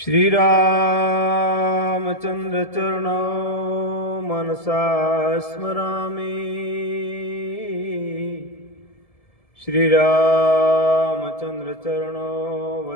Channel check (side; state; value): right; late; 1.7 ms